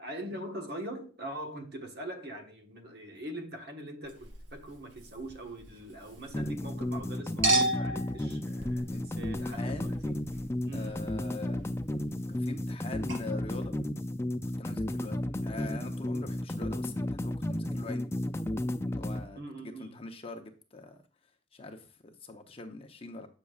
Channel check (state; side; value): normal; both; correlation 0.54